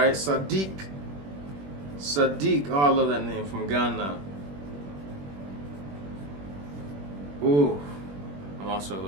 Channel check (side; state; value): left; late; 21 ms